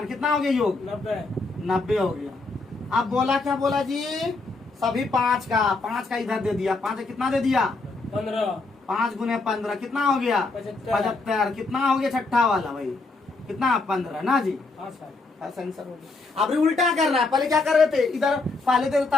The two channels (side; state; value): right; quieter; 3.6 dB